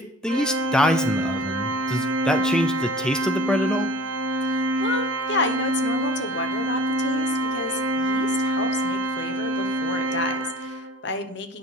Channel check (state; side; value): normal; both; correlation 0.43